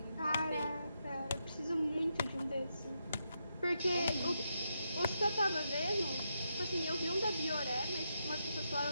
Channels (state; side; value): inverted; both; correlation -0.83